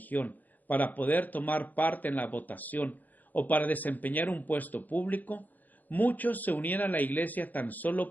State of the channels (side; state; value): right; late; 0.083 ms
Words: para poder tomar parte en la votación o para desempeñar un puesto público, muchos se unían a la Iglesia tan